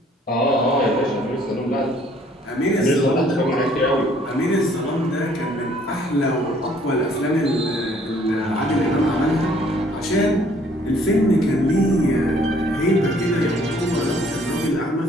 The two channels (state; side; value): normal; both; correlation 0.60